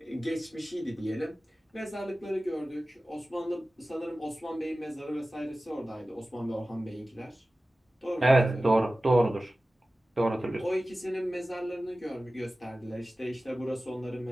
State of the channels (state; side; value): normal; both; correlation 0.96